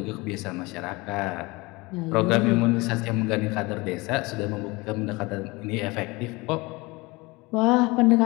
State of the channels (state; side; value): quieter; right; 23.9 dB